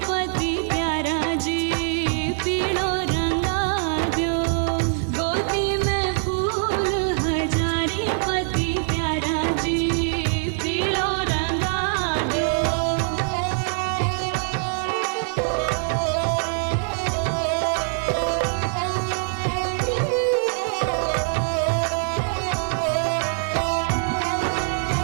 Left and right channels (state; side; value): silent; left; 61 dB below the other